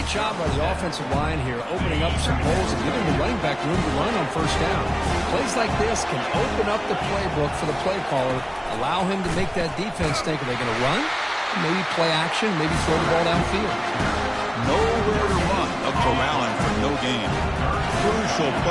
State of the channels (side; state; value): both; identical; correlation 1.00